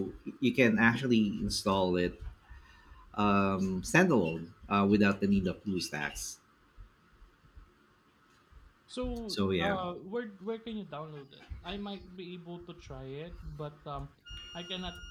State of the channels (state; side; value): identical; both; correlation 1.00